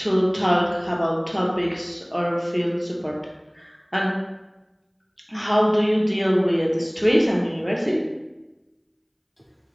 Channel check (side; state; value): both; identical; correlation 1.00